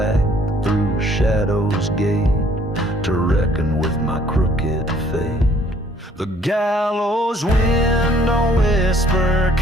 through Shadow's gate to reckon with my crooked fate. The gallows wind don't whisper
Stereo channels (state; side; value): normal; both; correlation 0.61